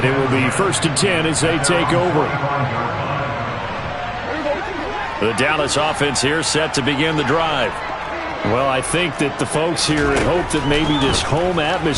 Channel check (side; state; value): both; identical; correlation 1.00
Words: it will be first and 10 as they take over. The Dallas offense here set to begin the drive. Well, I think that the folks here had hoped that maybe this home